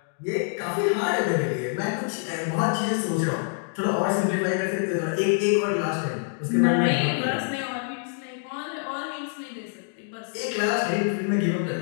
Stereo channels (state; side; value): silent; right; 61 dB below the other